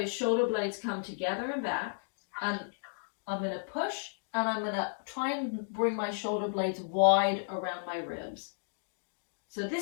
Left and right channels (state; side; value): silent; right; digital silence